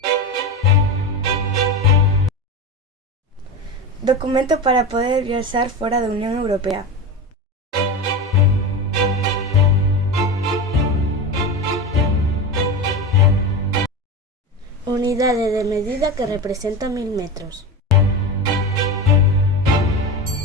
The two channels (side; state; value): both; normal; correlation 0.23